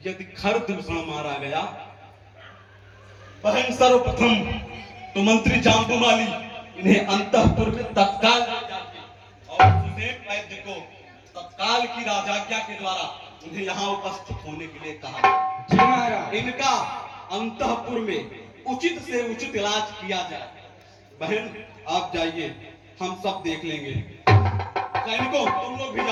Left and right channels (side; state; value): both; identical; correlation 1.00